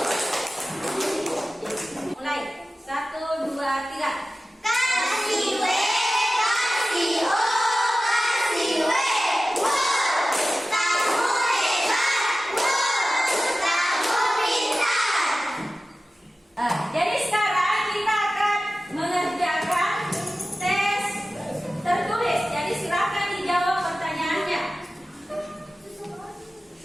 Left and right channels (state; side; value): normal; both; correlation 0.95